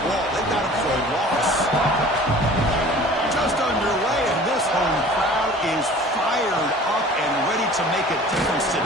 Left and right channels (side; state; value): both; normal; correlation 0.45